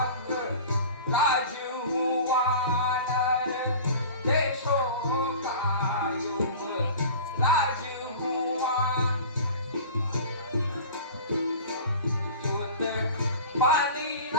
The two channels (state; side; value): inverted; both; correlation -0.39